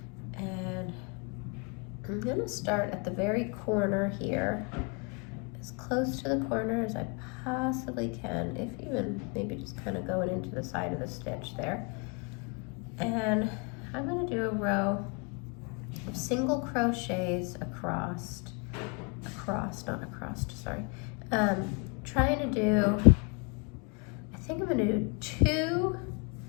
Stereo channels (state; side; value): quieter; right; 33.4 dB